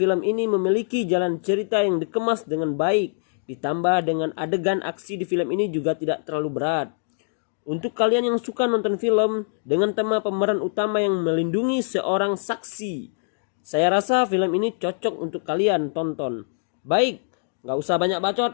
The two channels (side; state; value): right; silent; digital silence